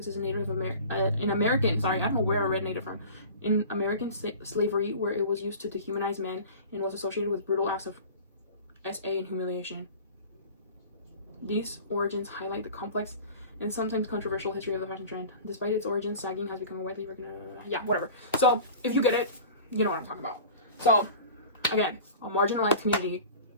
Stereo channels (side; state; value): both; inverted; correlation -0.39